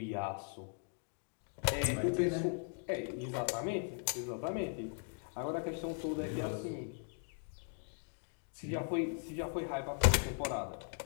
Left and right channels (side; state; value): right; silent; 52 dB below the other